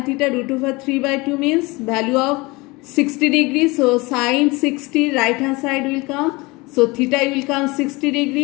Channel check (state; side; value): quieter; right; 24.1 dB